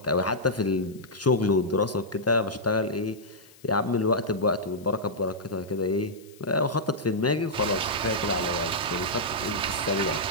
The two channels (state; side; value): noise; left; hiss, 26 dB below the sound